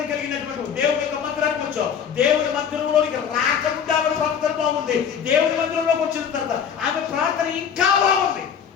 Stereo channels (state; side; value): quieter; right; 7.7 dB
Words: కలిగినటువంటి దేవుని యొక్క మందిరానికి వచ్చావు. దేవుని మందిరంలోనికి రాకముందు ఆమె ప్రవర్తన బాగుంది. దేవుని మందిరంలోకి వచ్చిన తర్వాత ఆమె ప్రార్థన ఇంకా బాగుంది.